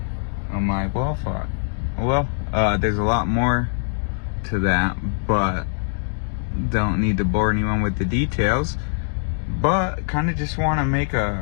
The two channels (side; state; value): right; silent; digital silence